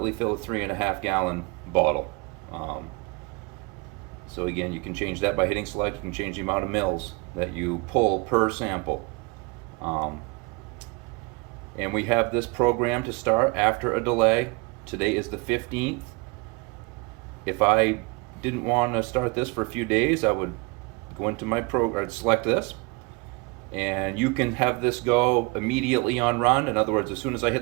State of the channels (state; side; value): quieter; left; 28.2 dB